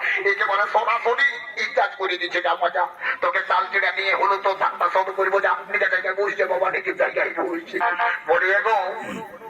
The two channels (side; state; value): both; identical; correlation 1.00